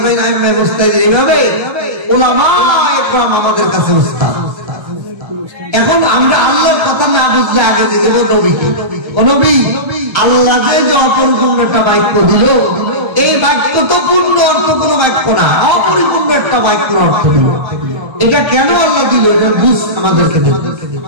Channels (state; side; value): late; left; 1.3 ms